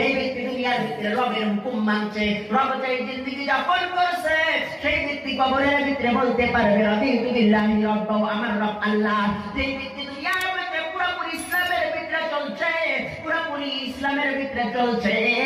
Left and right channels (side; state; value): both; identical; correlation 1.00